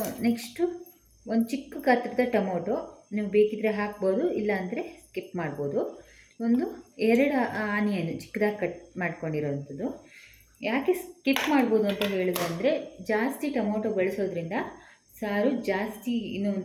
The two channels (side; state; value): both; identical; correlation 1.00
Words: ನೆಕ್ಸ್ಟು ಒಂದು ಚಿಕ್ಕ ಗಾತ್ರದ ಟೊಮೊಟೊ, ನೀವು ಬೇಕಿದ್ದರೆ ಹಾಕ್ಬೋದು, ಇಲ್ಲಾಂದರೆ ಸ್ಕಿಪ್ ಮಾಡ್ಬೋದು. ಒಂದು 2 ಆನಿಯನ್ ಚಿಕ್ಕದಾಗಿ ಕಟ್ ಮಾಡ್ಕೊಂಡಿರೋವಂಥದ್ದು. ಯಾಕೆ ಸ್ಕಿಪ್ ಮಾಡ್ಬೋದು ಅಂತ ಹೇಳಿದ್ರೆ, ಜಾಸ್ತಿ ಟೊಮೊಟೊ ಬಳಸೋದ್ರಿಂದ ಸಾರು ಜಾಸ್ತಿ ಇನ್ನೂ